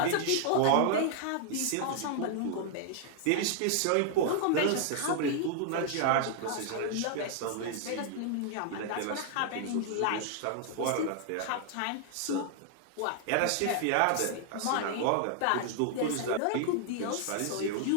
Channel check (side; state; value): both; different; correlation 0.00